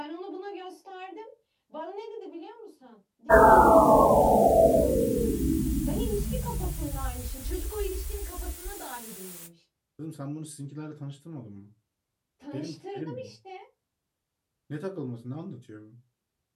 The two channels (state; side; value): identical; both; correlation 1.00